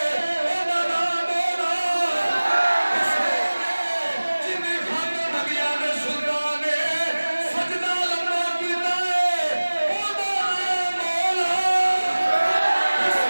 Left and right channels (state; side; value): inverted; both; correlation -1.00